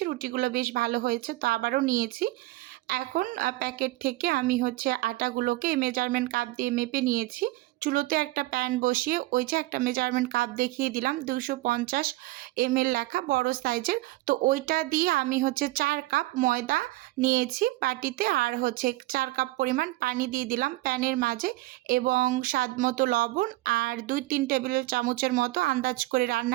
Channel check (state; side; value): quieter; left; 19.0 dB